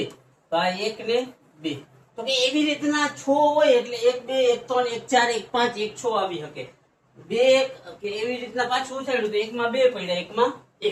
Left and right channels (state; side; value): identical; both; correlation 1.00